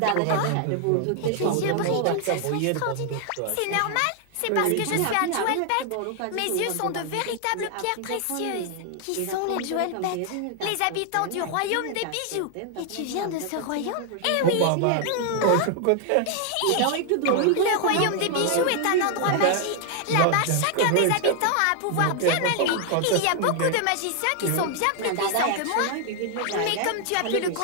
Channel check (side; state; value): both; different; correlation 0.00